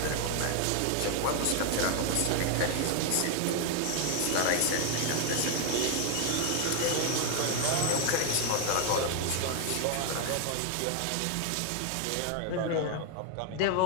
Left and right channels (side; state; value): both; different; correlation 0.01